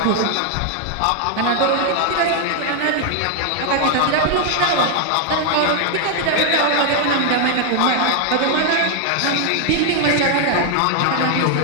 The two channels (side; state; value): both; different; correlation 0.00